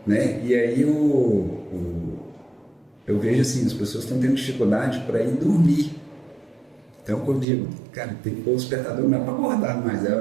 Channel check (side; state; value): left; drops out; at 7.5 s